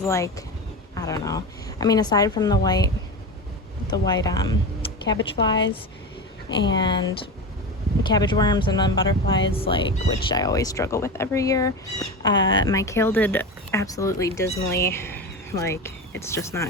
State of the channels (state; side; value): normal; both; correlation 0.24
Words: like, I don't know. I mean, aside from the white cabbage flies and cabbage worms and then butterflies, like, which I always struggle with every year, my kale did absolutely dismally. Like, it's just